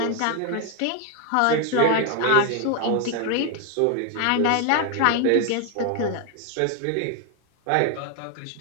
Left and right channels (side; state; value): both; different; correlation 0.01